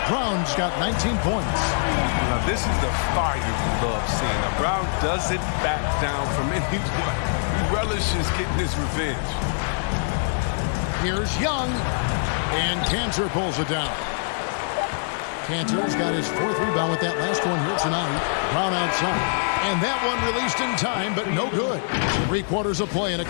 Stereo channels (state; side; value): silent; right; digital silence